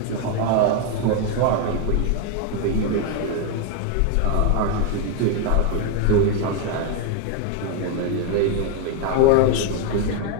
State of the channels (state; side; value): different; both; correlation 0.01